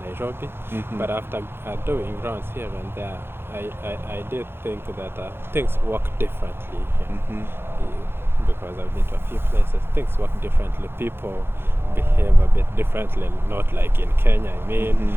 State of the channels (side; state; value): left; late; 0.11 ms